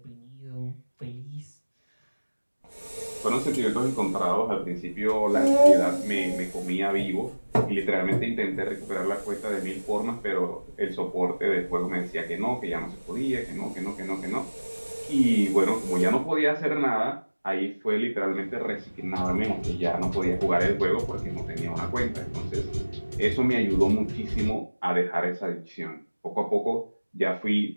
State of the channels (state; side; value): inverted; both; correlation -1.00